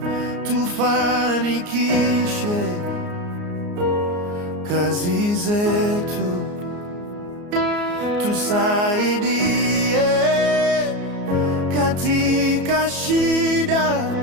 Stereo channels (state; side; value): late; left; 34 ms